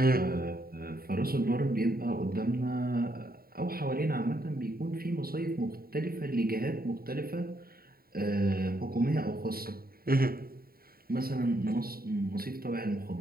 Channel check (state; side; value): late; left; 0.43 ms